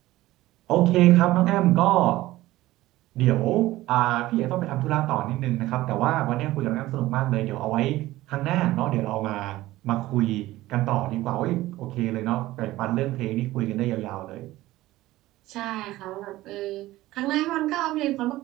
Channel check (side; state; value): left; quieter; 16.8 dB